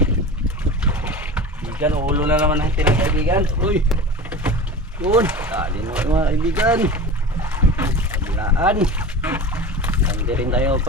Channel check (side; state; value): both; normal; correlation 0.32